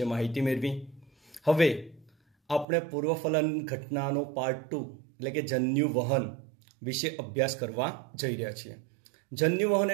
માહિતી મેળવી. હવે આપણે પૂર્વફલન ઘટનાનો પાર્ટ 2 એટલે કે જન્યુ વહન વિશે અભ્યાસ કરવા જઈ રહ્યા છીએ. જન્યુ વહન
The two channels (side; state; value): left; drops out; at 2.7 s